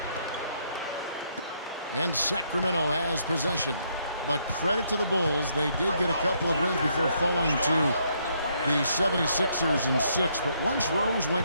And Sacramento has possession. But credit to the Bulls, they did get a couple of wins before falling to the 76ers in 6. But once Rose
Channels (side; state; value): both; inverted; correlation -0.72